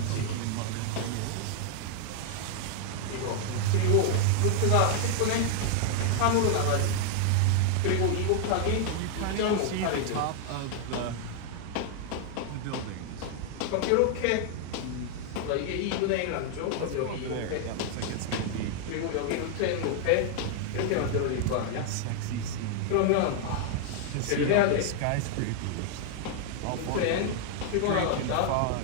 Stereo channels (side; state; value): both; different; correlation 0.00